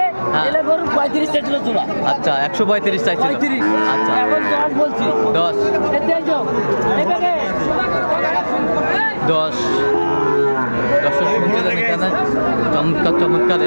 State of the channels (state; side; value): inverted; both; correlation -1.00